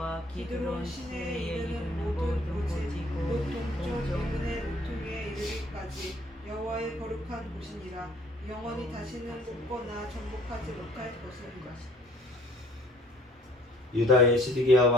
기드론 시내에 이르는 모든 고지고 동쪽 이분의 모퉁이에 이르기까지 여호와의 거룩한 곳이니라. 영원히 다시는 뽑거나 정복하지 못할 것이니라. 유다의 시드기야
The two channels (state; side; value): normal; both; correlation 0.57